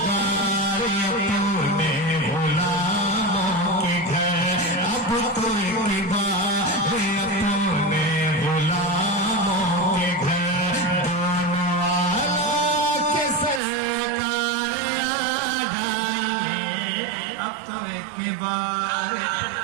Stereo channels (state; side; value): drops out; left; at 13.6 s